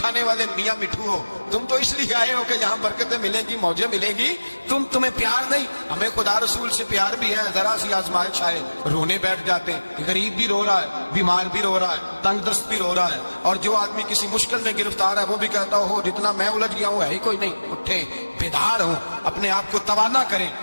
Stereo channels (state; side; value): inverted; both; correlation -1.00